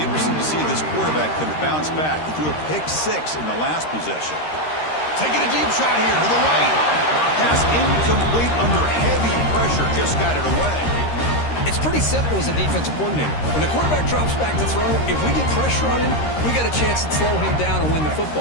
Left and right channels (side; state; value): right; late; 13 ms